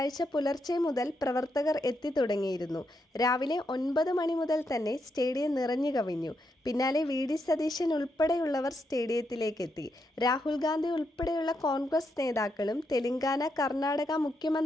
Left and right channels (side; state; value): both; normal; correlation 0.81